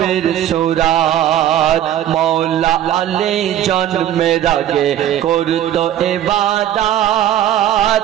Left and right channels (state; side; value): quieter; left; 11.6 dB